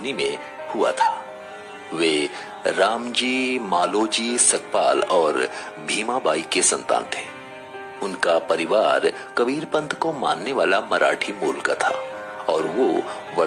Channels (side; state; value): both; identical; correlation 1.00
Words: में हुआ था। वे रामजी मालोजी सकपाल और भीमाबाई के संतान थे। उनका परिवार कबीर पंथ को मानने वाला मराठी मूल का था और वो